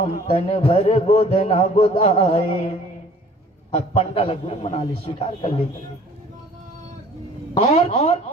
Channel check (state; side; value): normal; both; correlation 0.52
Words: तन भर गोदना गोदाए। पंडाल गुरु बना ले, स्वीकार कर ले। और